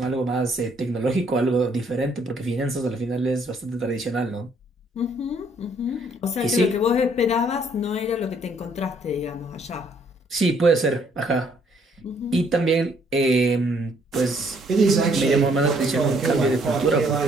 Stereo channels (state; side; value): normal; both; correlation 0.66